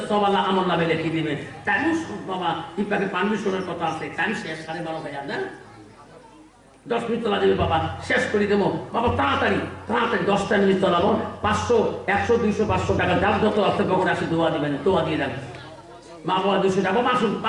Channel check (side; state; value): both; identical; correlation 1.00